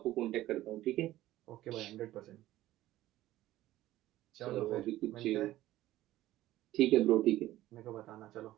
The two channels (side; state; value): left; quieter; 15.2 dB